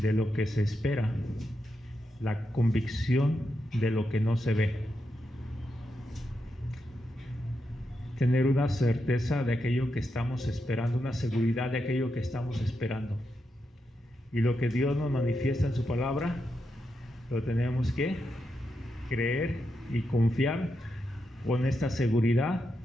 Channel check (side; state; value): both; normal; correlation 0.85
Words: lo que se espera, la convicción de lo que no se ve. Tener una certeza de aquello que estamos esperando, una seguridad de aquello que estamos esperando. Y lo que Dios nos manifiesta en su palabra, lo tenemos que creer y confiar con esta seguridad,